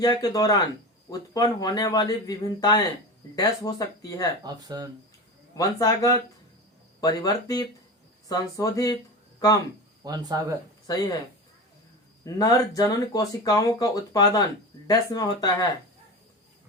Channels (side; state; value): both; normal; correlation 0.27